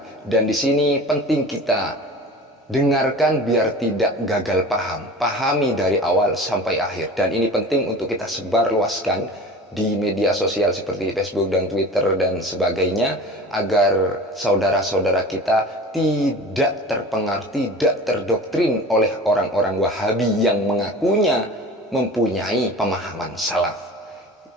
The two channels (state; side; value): normal; both; correlation 0.37